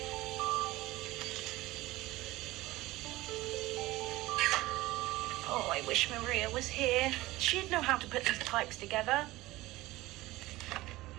Oh, I wish Maria was here. She'd know how to put these pipes together.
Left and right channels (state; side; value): quieter; left; 18.5 dB